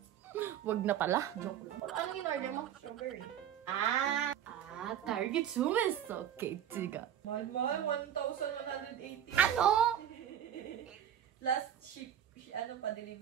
wag na pala. Joke lang. Ano in-order mo? Sugar. Target sumiso. Okay, tiga. Mahal, 1,180. Ano? Last ship, ano pa,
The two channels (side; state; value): left; quieter; 10.1 dB